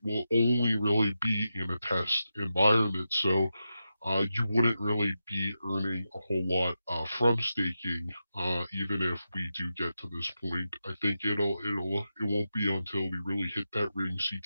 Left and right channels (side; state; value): both; inverted; correlation -0.89